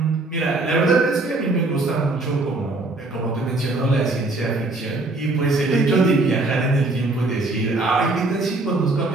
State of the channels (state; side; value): quieter; left; 3.1 dB